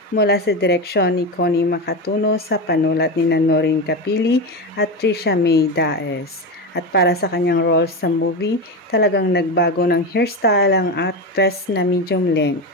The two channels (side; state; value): both; normal; correlation 0.18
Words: mula sa direksyon ni Connie Makatuno sa panulat ni Noreen Capili at Trisha May Daes. At para sa kanyang role sa movie, talagang nagbago ng hairstyle ang actress na medium length.